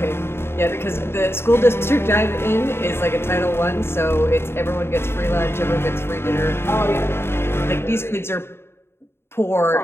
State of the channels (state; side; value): late; right; 0.12 ms